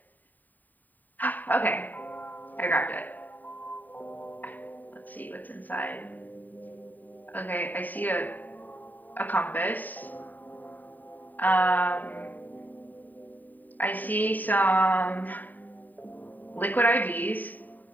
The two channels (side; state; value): right; late; 0.086 ms